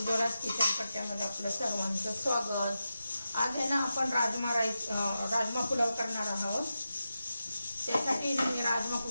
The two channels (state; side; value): inverted; both; correlation -0.90